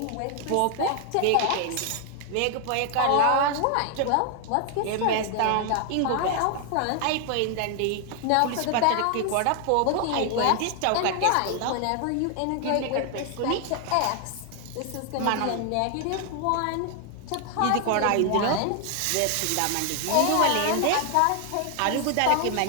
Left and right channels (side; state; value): both; different; correlation 0.00